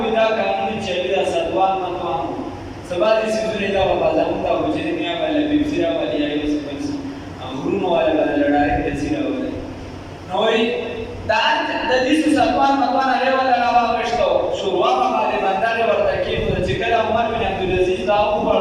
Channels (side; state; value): both; identical; correlation 1.00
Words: دا قانون چې دا سدوان متوان سبا دې سيزونه دا په ځان دا وځي دنیا باندې بيسيرا باندې یې وسپنس غرونو والا باندې لړای دې سيرا وله نو دا د دې سدوان متوان هغه ولا راوښتو شروع باندې باندې ورته کې چې کله عمر بن عبد العزيز دا